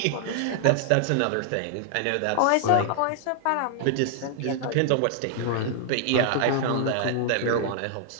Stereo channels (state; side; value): different; both; correlation -0.01